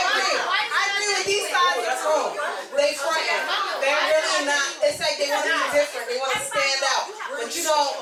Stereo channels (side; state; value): both; identical; correlation 1.00